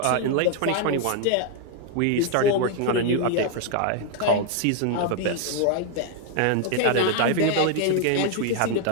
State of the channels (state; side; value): different; both; correlation 0.01